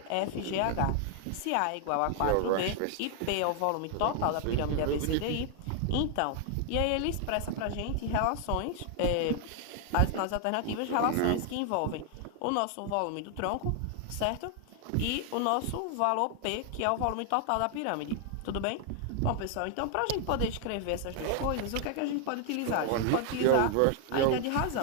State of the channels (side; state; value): both; different; correlation 0.00